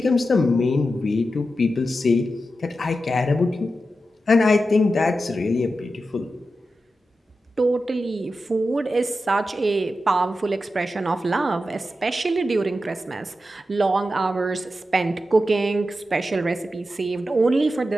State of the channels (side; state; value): both; normal; correlation 0.90